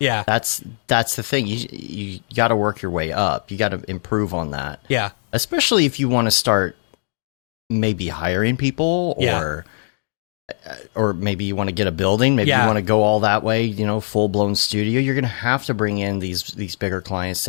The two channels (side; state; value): right; silent; digital silence